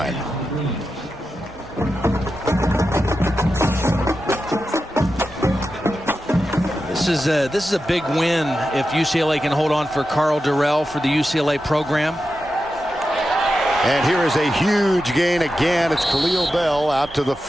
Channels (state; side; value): normal; both; correlation 0.90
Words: This is a big win if UCLA can hold on for Carl Durrell for the UCLA program. And here is a huge gain again. It's Khalil Bell out to the